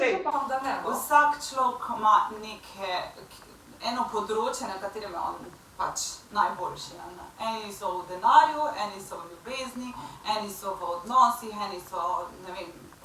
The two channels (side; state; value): both; identical; correlation 1.00